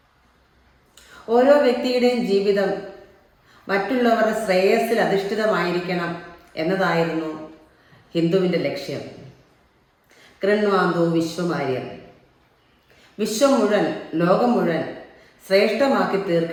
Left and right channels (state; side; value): identical; both; correlation 1.00